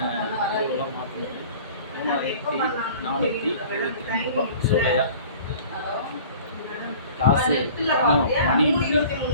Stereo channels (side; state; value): both; inverted; correlation -0.45